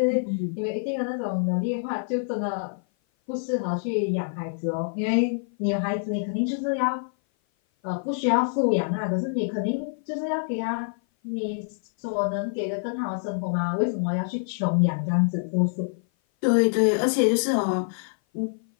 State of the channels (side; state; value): right; silent; 56 dB below the other